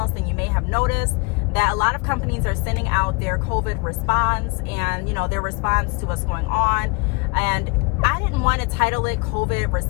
then you may have noticed that a lot of companies are sending out their COVID response and, you know, their response to what's going on. And I didn't want to title it COVID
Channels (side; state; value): right; quieter; 28.5 dB